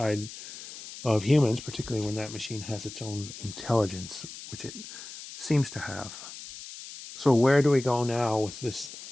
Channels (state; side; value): noise; left; hiss, 13 dB below the sound